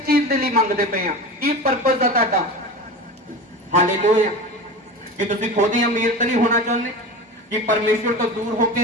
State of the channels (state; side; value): normal; both; correlation 0.30